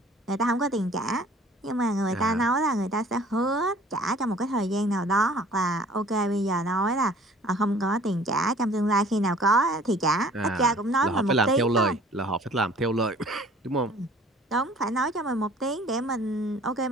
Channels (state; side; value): normal; both; correlation 0.51